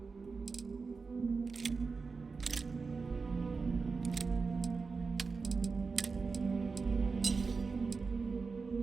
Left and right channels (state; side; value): quieter; left; 4.6 dB